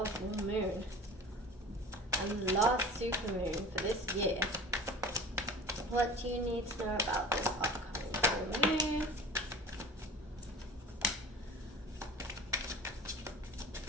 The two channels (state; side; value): normal; both; correlation 0.37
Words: full moon? And last supermoon for this year. What do you need to know about this upcoming full moon?